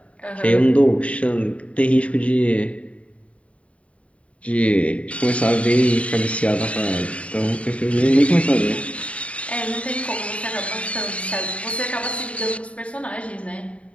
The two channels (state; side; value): late; right; 0.063 ms